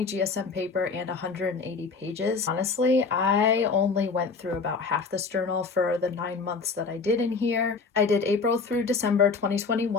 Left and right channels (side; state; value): right; quieter; 4.6 dB